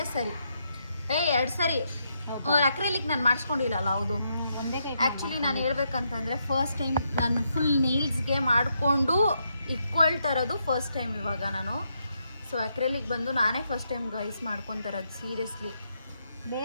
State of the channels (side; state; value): both; inverted; correlation -0.79